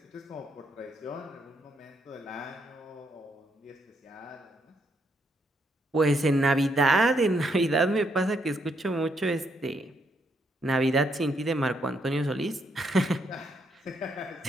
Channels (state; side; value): normal; both; correlation 0.75